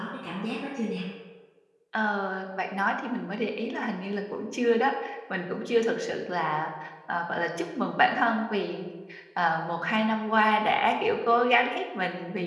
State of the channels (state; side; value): identical; both; correlation 1.00